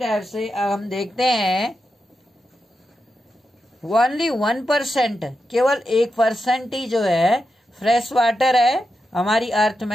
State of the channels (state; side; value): normal; both; correlation 0.88